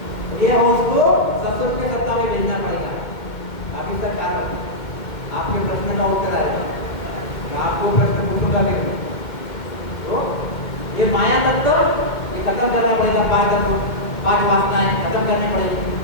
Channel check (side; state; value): right; late; 2.1 ms